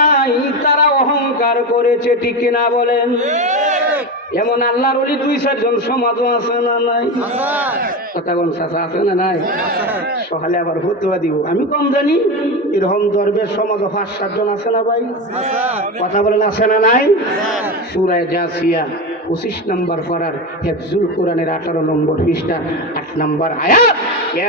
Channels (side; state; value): both; normal; correlation 0.20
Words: নাই তারা অহংকার করেছে, ঠিক কিনা বলেন? এমন আল্লাহর ওলি 2-4 জন সমাজও আছে না নাই? কথা কোন চাচা আছে না নাই? সকালে আবার ফতুয়া দিব, আমি কম জানি, এরকম দরবেশ সমাজ 5-7 জন আছে না ভাই? কথা বলেন আছে না নাই? সূরা জাসিয়া 25 নম্বর পারার হিফজুল কোরআনের 18 নম্বর পৃষ্ঠা 8 নম্বর আয়াত।